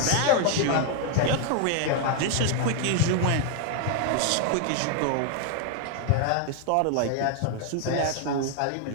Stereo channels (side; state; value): both; different; correlation 0.00